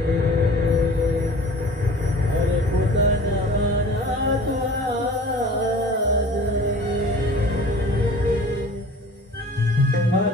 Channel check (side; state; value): both; normal; correlation 0.44